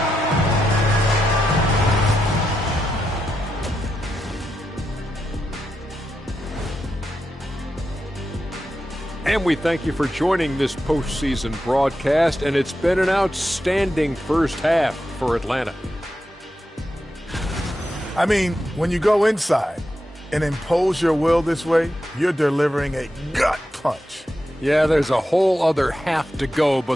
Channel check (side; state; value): both; normal; correlation 0.87